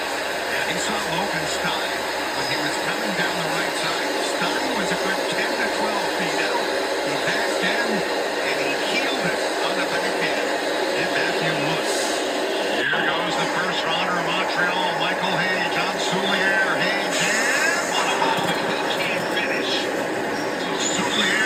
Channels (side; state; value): both; identical; correlation 1.00